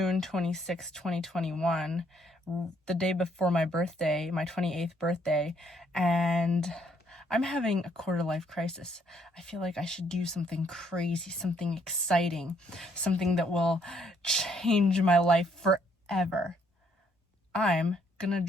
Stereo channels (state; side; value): normal; both; correlation 0.68